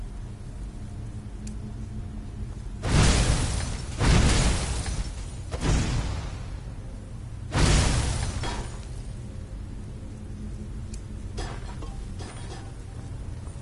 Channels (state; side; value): identical; both; correlation 1.00